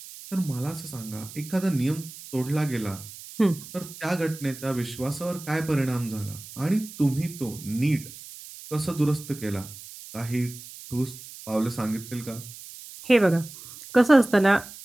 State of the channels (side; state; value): right; noise; hiss, 15 dB below the sound